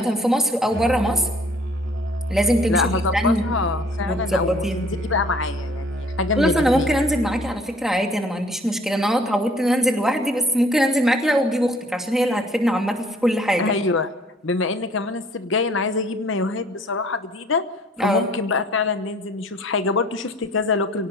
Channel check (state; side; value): normal; both; correlation 0.56